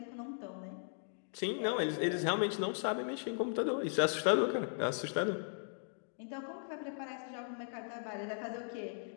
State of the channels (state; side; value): silent; right; digital silence